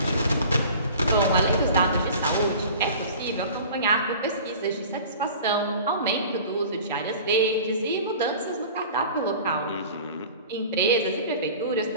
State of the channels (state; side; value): inverted; both; correlation -0.42